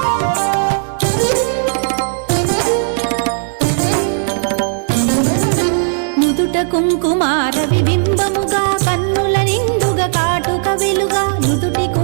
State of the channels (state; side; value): silent; left; digital silence